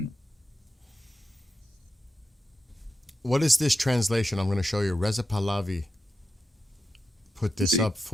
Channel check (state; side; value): normal; both; correlation 0.89